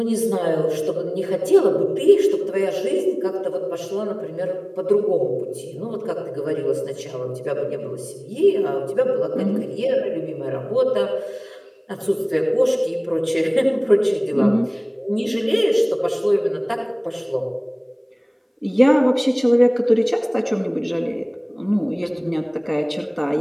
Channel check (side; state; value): both; identical; correlation 1.00